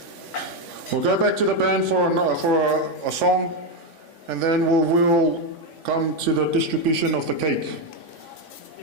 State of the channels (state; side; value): late; left; 3.5 ms